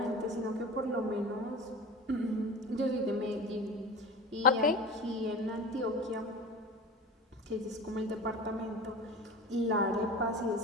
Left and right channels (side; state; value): both; normal; correlation 0.34